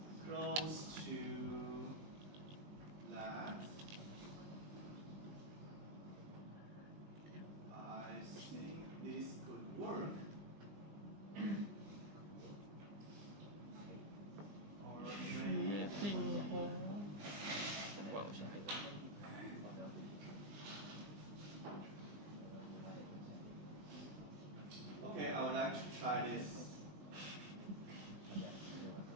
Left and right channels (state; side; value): late; left; 20 ms